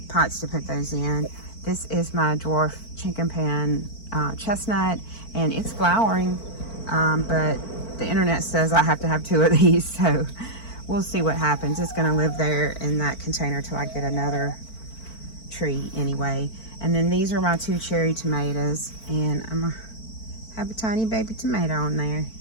pots to put those in. This is my dwarf chinquapin chestnut, and it's flowering, but the internet says I have to have 2 of these, so we'll see what happens. It's gonna live there in that container till I get another tree anyway. And then these are my 2 cherry tomatoes, and I'm gonna have a tiny baby tomato in there.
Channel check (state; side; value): late; right; 4.5 ms